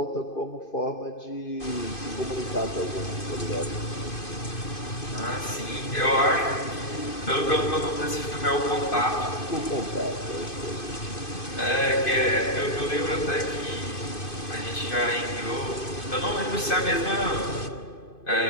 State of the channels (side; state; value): right; late; 2.5 ms